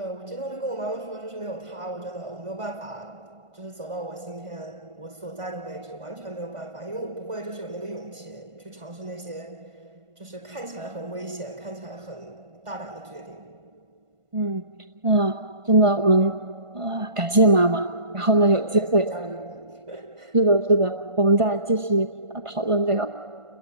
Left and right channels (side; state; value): left; late; 1.5 ms